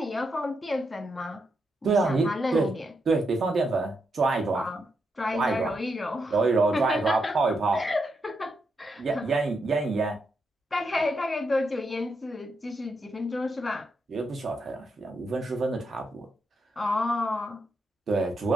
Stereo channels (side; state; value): both; normal; correlation 0.82